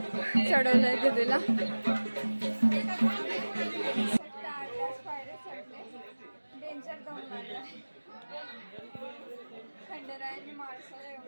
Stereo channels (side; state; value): both; inverted; correlation -1.00